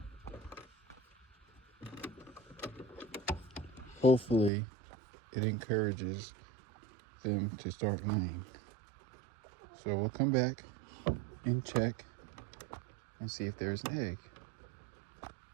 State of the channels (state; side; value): drops out; left; at 4.5 s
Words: hopefully it encourages them to start laying. So we'll come back and check and see if there's an egg.